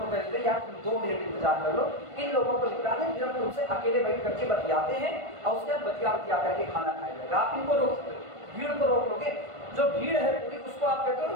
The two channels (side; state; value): left; late; 1.5 ms